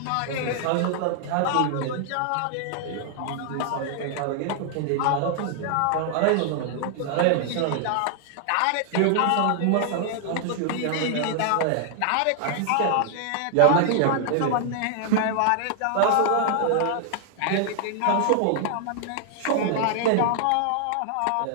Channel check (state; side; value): different; both; correlation -0.01